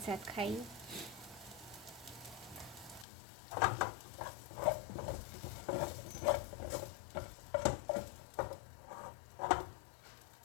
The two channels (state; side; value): drops out; right; at 3.1 s